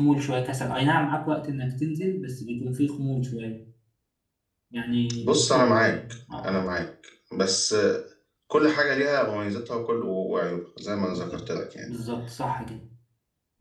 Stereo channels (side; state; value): both; identical; correlation 1.00